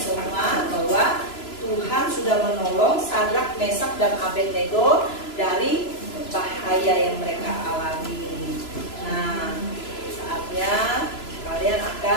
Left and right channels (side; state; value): right; late; 3.0 ms